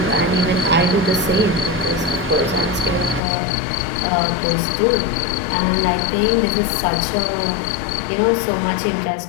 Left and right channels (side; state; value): right; drops out; at 3.2 s